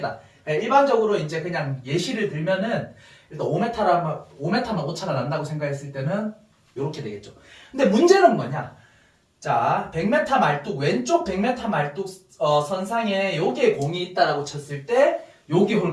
일반적으로 이제 그냥 예시를 들면은 일단 5m만 오차가 난다고 생각했을 때는 이렇게 되겠죠. 근데 문제는 뭐냐? 자, 100m 말뚝, 왼쪽 100m 말뚝 선상에 여기에 공이 있다라고 쳤을 때 여기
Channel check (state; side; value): identical; both; correlation 1.00